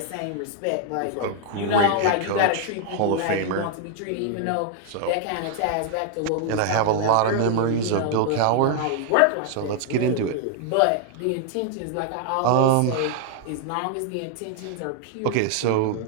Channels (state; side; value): different; both; correlation 0.00